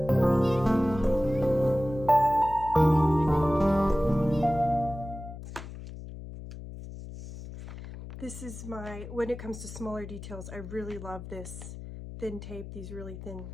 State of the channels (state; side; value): noise; left; hum, 12 dB below the sound